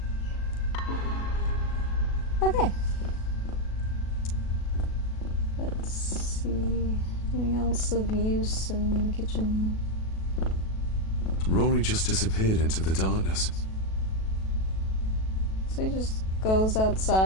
Okay. Let's see. Anything else of use in the kitchen? Rory just disappeared into the darkness. So he just goes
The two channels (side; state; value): right; late; 37 ms